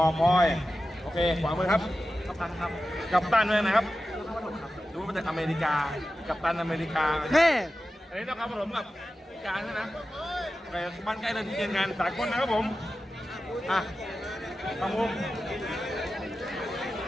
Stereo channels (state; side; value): normal; both; correlation 0.93